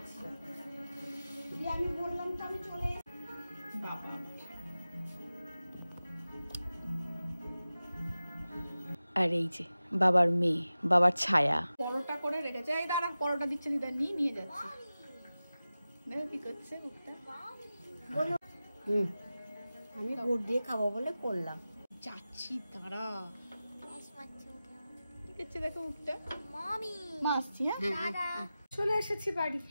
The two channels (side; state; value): both; inverted; correlation -0.95